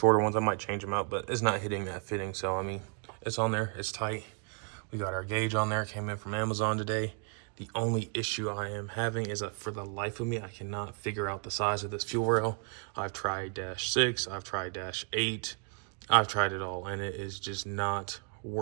ones. I might change them out, but it's not hitting that fitting. So, I mean, it's on there. It's tight. We got our gauge on there. It came in from Amazon today. The only issue I am having is that for the life of me, I cannot figure out the size of this fuel rail. I've tried -6. I've tried -8. I've tried it all, and it is just not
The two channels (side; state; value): left; quieter; 38.3 dB